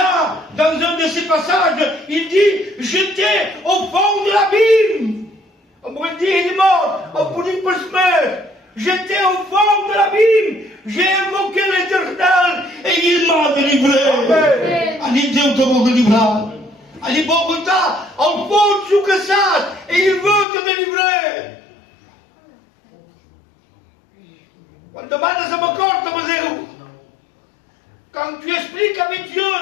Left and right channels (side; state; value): right; drops out; at 20.5 s